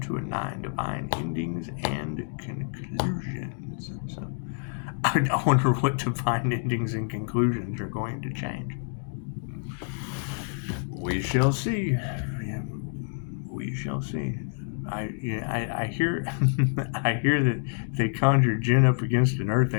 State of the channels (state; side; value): silent; right; 60 dB below the other